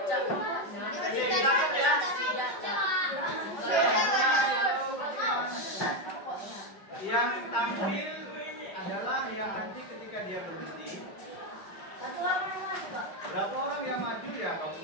Yang tampil adalah yang nanti ketika dia berhenti. Berapa orang yang maju ya?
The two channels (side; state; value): right; late; 5.1 ms